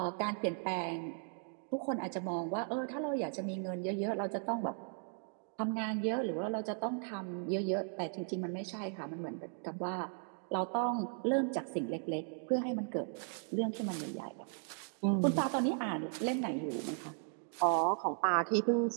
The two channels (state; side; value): silent; left; 53 dB below the other